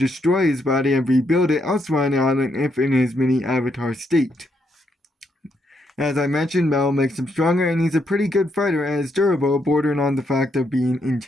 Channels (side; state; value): both; normal; correlation 0.77